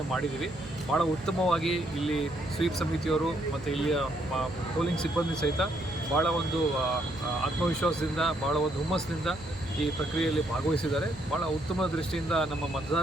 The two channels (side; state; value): right; noise; hum, 17 dB below the sound